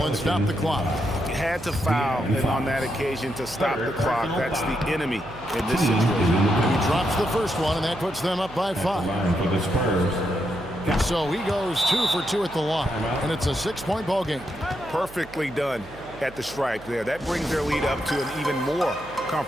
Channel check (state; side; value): noise; right; hum, 20 dB below the sound